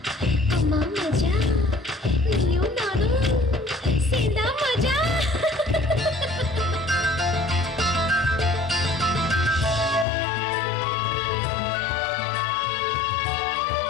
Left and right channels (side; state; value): right; drops out; at 10.1 s